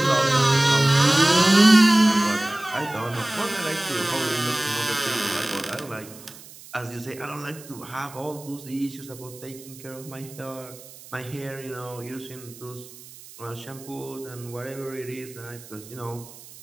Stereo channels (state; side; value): noise; right; hiss, 19 dB below the sound